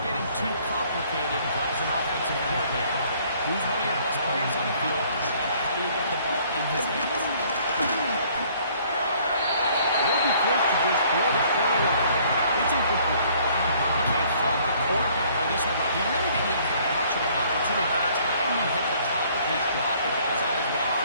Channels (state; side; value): inverted; both; correlation -0.60